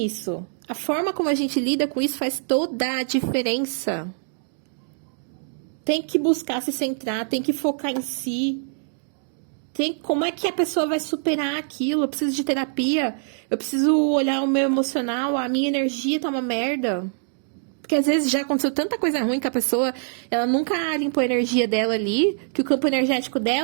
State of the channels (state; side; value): silent; left; digital silence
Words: A forma como a gente lida com isso faz toda a diferença. Tem que buscar se centrar, tem que focar em si. Como é que a pessoa vai superar aquilo? Eu preciso de terapia, eu preciso olhar o meu emocional, a minha energia tá uma merda. Porque às vezes já aconteceu tanta coisa ruim que a pessoa, ela nunca limpou a energia dela ali, que o campo energético